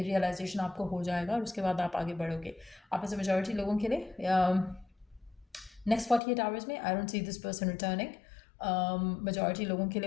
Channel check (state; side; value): drops out; right; at 6.2 s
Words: रियलाइजेशन आपको हो जाएगा और उसके बाद आप आगे बढ़ोगे। आप में से मेजॉरिटी लोगों के लिए नेक्स्ट 48 आवर्स में I don't see this person returning. Majority लोगों के